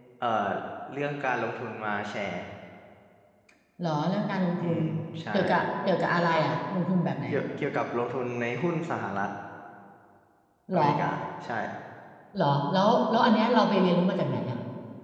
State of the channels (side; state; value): both; identical; correlation 1.00